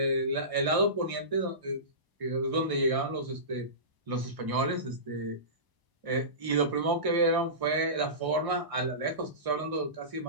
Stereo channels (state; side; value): late; left; 1.6 ms